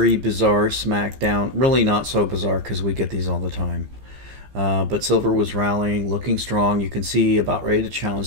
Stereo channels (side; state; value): left; late; 15 ms